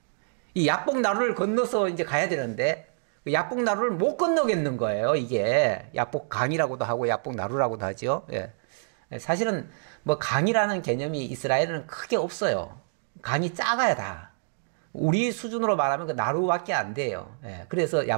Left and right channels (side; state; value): left; silent; digital silence